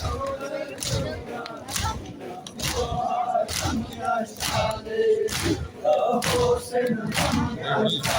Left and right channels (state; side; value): identical; both; correlation 1.00